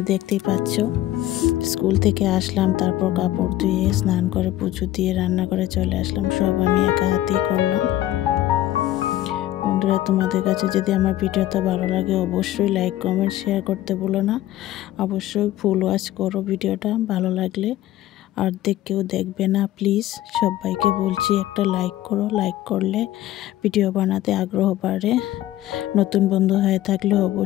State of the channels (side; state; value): right; quieter; 14.2 dB